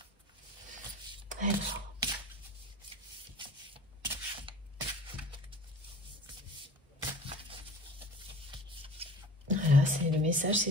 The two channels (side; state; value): both; normal; correlation 0.41